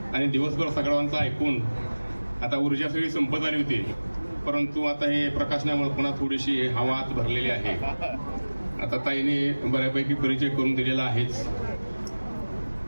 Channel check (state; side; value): inverted; both; correlation -1.00